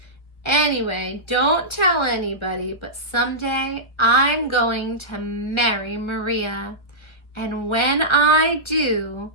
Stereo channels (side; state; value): right; late; 1.3 ms